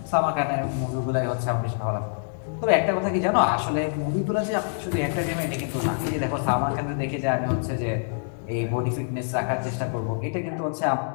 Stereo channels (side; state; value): right; silent; digital silence